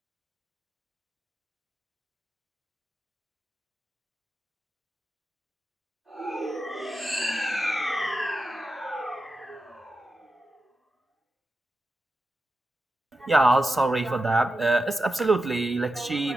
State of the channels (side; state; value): both; normal; correlation 0.90